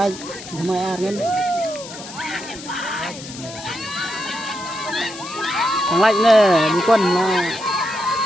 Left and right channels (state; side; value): noise; left; hiss, 13 dB below the sound